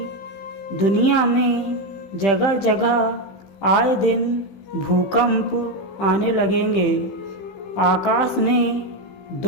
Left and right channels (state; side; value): late; right; 15 ms